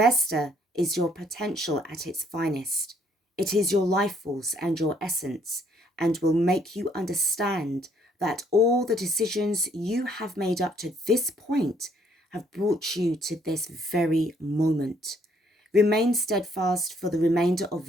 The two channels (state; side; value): normal; both; correlation 0.66